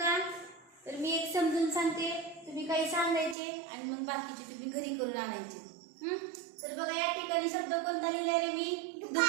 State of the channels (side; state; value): left; drops out; at 3.4 s